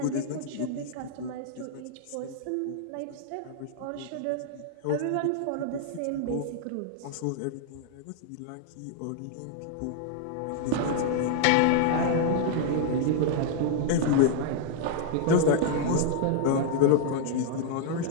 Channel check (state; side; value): different; both; correlation -0.01